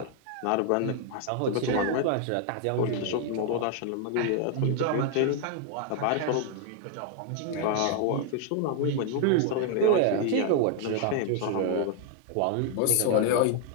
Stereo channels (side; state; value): both; different; correlation 0.00